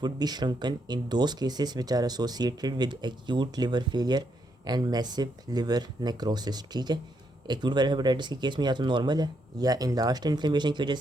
would be shrunken in those cases which are associated with acute liver failure and massive liver necrosis. ठीक है, एक्यूट वायरल हेपेटाइटिस के केस में या तो नॉर्मल है या इनलार्ज इन्फ्लेमेशन की वजह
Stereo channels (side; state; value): both; normal; correlation 0.77